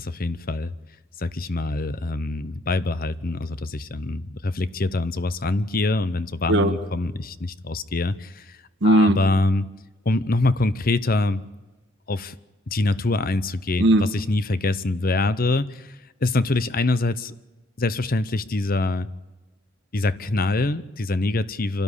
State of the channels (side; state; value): both; normal; correlation 0.67